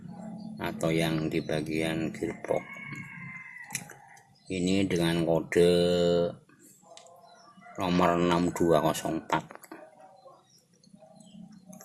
atau yang di bagian gearbox. Ini dengan kode nomor 6204.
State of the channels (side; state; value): both; identical; correlation 1.00